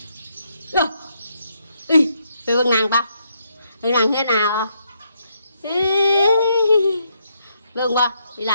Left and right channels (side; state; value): both; inverted; correlation -0.76